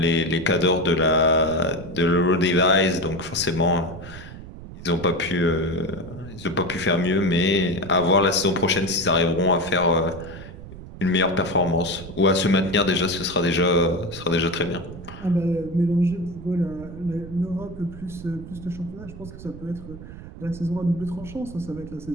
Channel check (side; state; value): right; noise; rumble, 14 dB below the sound